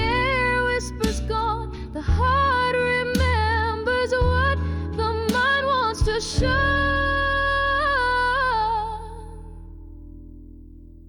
whispers gone. The heart remembers what the mind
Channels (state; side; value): identical; both; correlation 1.00